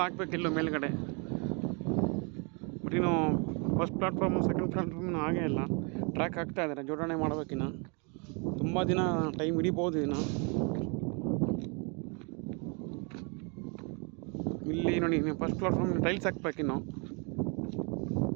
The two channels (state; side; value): quieter; left; 34.1 dB